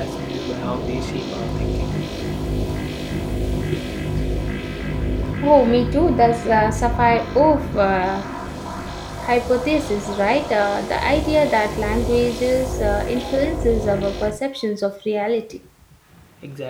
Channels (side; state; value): both; identical; correlation 1.00